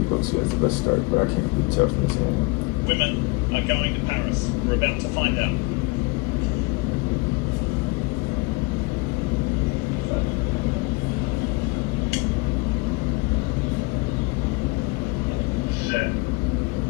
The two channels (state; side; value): quieter; right; 25.9 dB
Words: has the best start, but I can't really tell from this game. Women are going to Paris. We're about to find out.